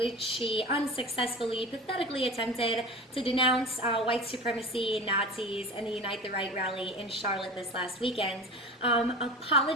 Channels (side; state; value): both; normal; correlation 0.33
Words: she unsuccessfully, pathetically attempted to denounce white supremacy, Nazis, and the Unite the Right rally in Charlotte this last weekend.